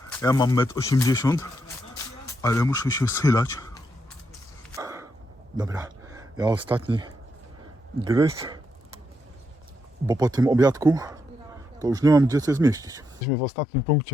Ja mam 1,80 m, ale muszę się schylać. Dobra, ja ostatni gryz, bo po tym obiadku to już nie mam gdzie coś zmieścić. Jesteśmy w ostatnim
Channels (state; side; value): normal; both; correlation 0.81